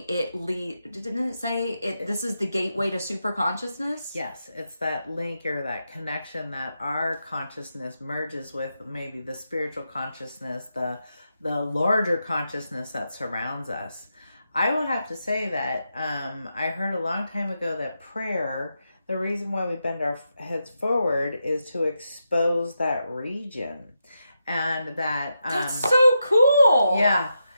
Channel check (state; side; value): inverted; both; correlation -0.86